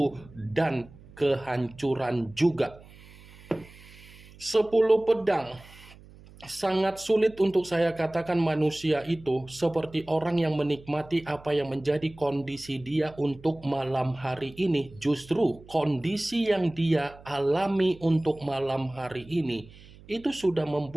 dan kehancuran juga. 10 pedang. Sangat sulit untuk saya katakan manusia itu seperti orang yang menikmati apa yang menjadi kondisi dia untuk malam hari ini. Justru kondisi yang dia alami untuk malam hari ini itu sudah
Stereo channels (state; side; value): noise; right; hum, 22 dB below the sound